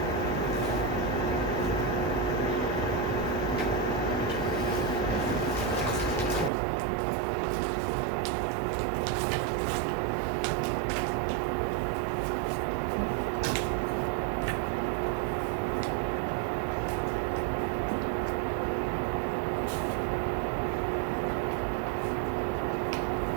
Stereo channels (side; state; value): left; drops out; at 6.5 s